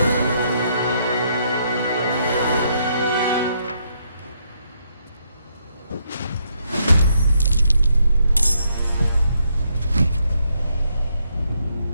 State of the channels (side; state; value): both; inverted; correlation -0.75